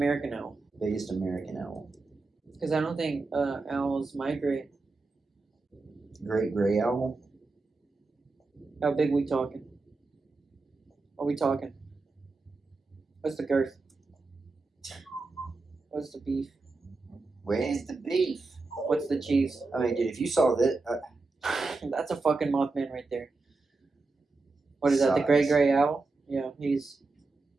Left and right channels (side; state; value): left; quieter; 3.7 dB